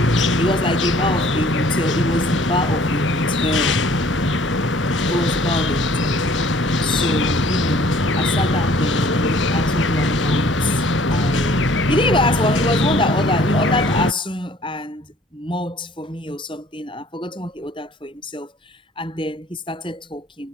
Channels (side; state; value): both; normal; correlation 0.56